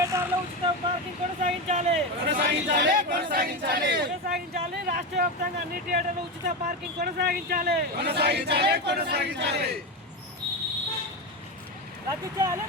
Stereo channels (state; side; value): normal; both; correlation 0.16